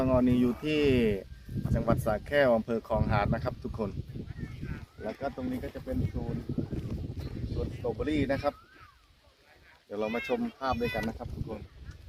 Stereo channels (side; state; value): both; identical; correlation 1.00